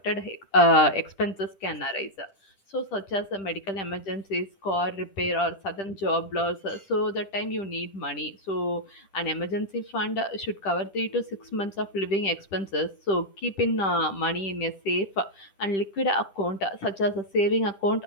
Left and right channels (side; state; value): right; late; 10 ms